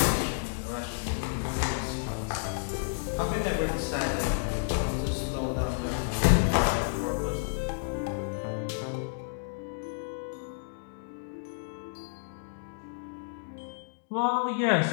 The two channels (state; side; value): silent; right; digital silence